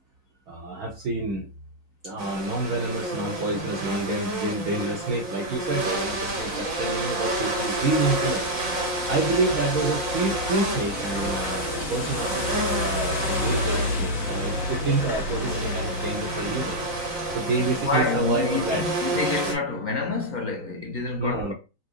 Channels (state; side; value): late; left; 3.9 ms